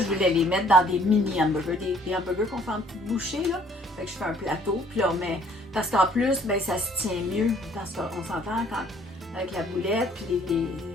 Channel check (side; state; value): both; normal; correlation 0.59